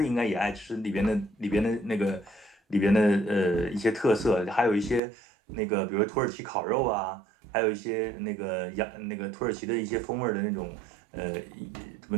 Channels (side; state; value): left; drops out; at 5.0 s